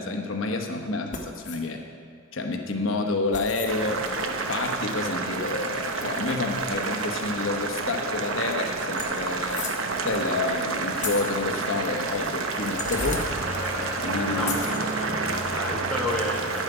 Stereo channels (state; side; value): normal; both; correlation 0.06